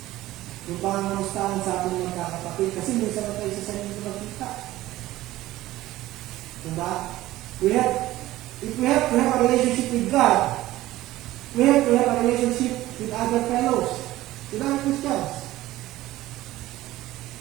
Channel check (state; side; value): quieter; left; 16.2 dB